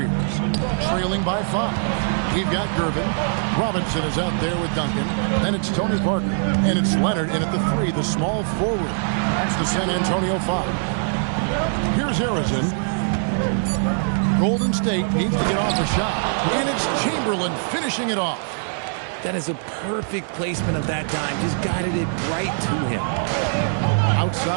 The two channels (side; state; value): left; silent; digital silence